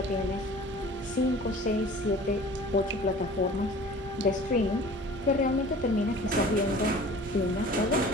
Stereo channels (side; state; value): both; normal; correlation 0.44